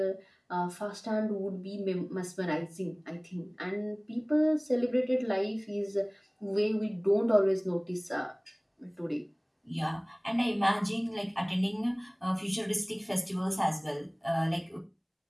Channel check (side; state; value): both; identical; correlation 1.00